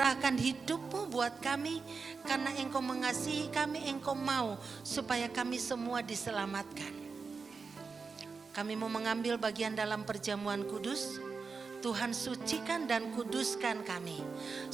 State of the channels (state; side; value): quieter; left; 4.8 dB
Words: hidup-Mu buat kami, karena Engkau mengasihi kami. Engkau mau supaya kami semua diselamatkan. Kami mau mengambil bagian dalam perjamuan kudus. Tuhan, sucikan dan kuduskan kami.